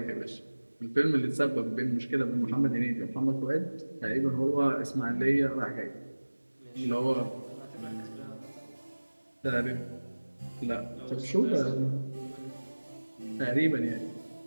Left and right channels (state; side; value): inverted; both; correlation -1.00